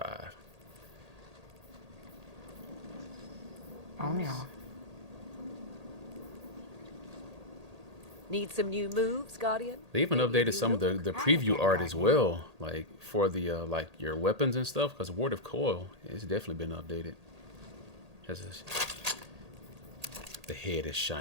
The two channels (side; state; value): left; late; 1.8 ms